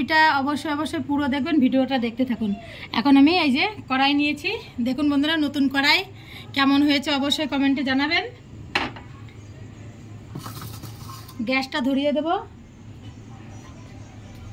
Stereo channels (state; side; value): identical; both; correlation 1.00